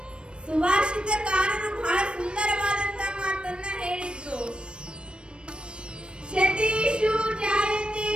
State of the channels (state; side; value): late; left; 0.056 ms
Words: ಸುಭಾಷಿತಕಾರರು ಬಹಳ ಸುಂದರವಾದಂತ ಮಾತನ್ನ ಹೇಳಿದ್ರು. ಶತೇಷು ಜಾಯತೆ